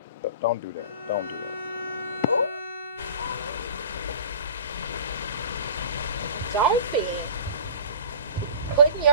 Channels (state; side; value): inverted; both; correlation -0.39